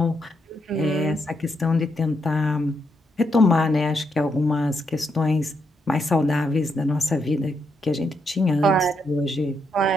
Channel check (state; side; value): normal; both; correlation 0.79